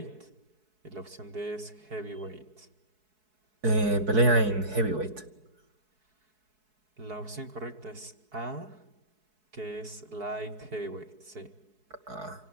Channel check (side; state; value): left; late; 4.7 ms